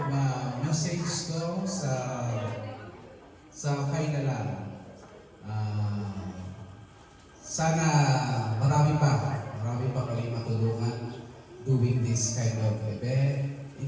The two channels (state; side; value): identical; both; correlation 1.00